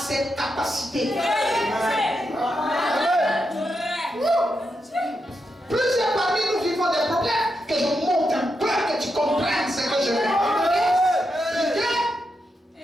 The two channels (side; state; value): both; normal; correlation 0.85